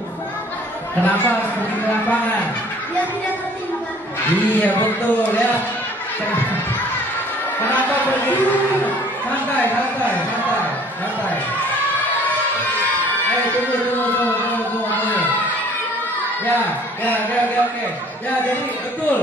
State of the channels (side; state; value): both; normal; correlation 0.54